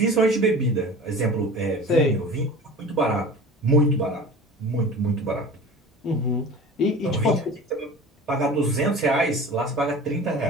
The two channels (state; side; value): normal; both; correlation 0.38